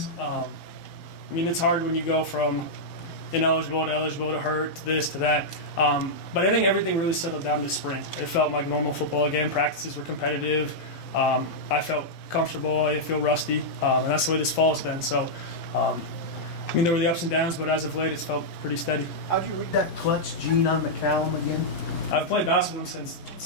I mean, it's hard when you go from ineligible to eligible to hurt to this to that. But I think everything really settled down this spring. It felt like normal football again. Practices were competitive. I felt comfortable. I feel rusty. And that's the way this fall has been. So, I mean, there were the ups and downs, but as of late, it's felt pretty steady. How'd you read that clutch gene on McCallum again? I've played basketball since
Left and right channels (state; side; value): late; right; 11 ms